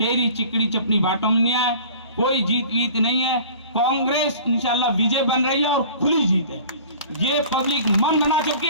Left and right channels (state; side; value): inverted; both; correlation -0.44